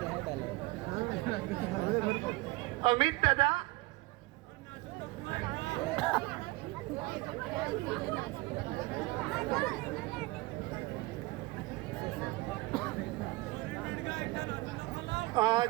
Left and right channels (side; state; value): left; quieter; 21.8 dB